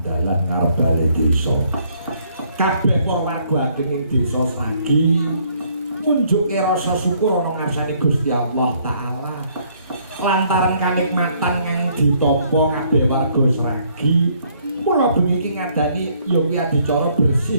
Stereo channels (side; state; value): both; inverted; correlation -0.66